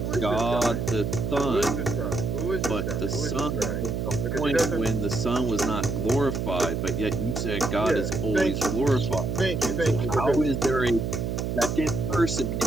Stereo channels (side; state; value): right; noise; hum, 2 dB below the sound